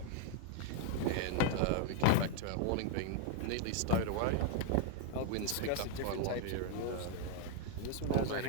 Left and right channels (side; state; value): both; different; correlation 0.00